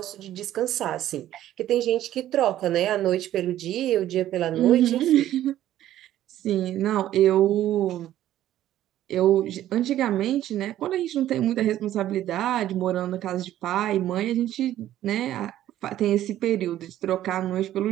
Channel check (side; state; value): left; quieter; 12.8 dB